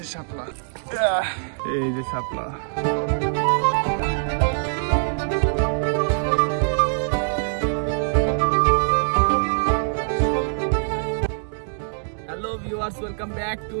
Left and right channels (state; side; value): silent; left; digital silence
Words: শাপলা, এই যে Shapla. Hello viewers, welcome back to